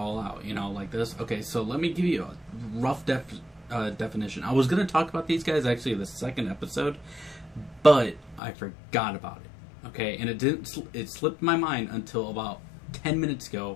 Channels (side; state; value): right; drops out; at 8.4 s